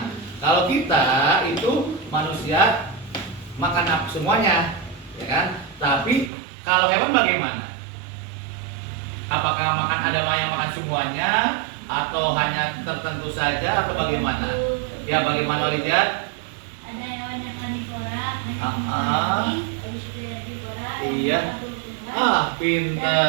kalau kita itu manusia makan apa semuanya, ya kan? Tapi kalau hewan bagaimana? Apakah ada yang makan semuanya atau hanya tertentu saja atau bagaimana? Ya, bagaimana Rijat? Ada hewan yang karnivora, Iya.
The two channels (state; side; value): drops out; left; at 6.3 s